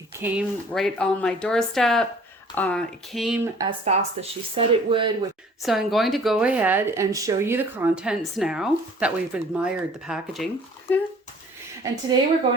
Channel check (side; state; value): both; normal; correlation 0.52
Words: came right on my doorstep. It came as fast as she said it would. So I'm going to go ahead and show you the contents now that we've admired the packaging. And today we're